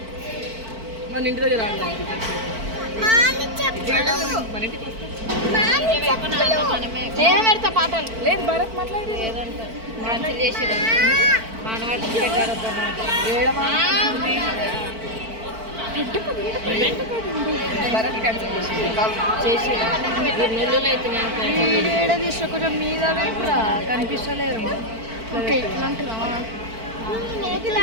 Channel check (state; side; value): late; left; 4.5 ms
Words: మన ఇంటి దగ్గర రాదు మన ఇంటికి నేను పెడతా పాటలు లేదు భరత్ మాట్లాడి భరత్ క్యాన్సిల్ చేసి ఏడ తీసుకో కొంచెం మీద కూడా కనిపిస్తలేరు ఓకే ఇట్లా అంటున్నావా